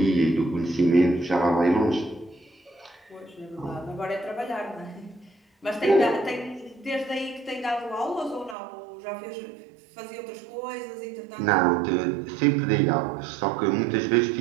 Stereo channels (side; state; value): left; drops out; at 8.6 s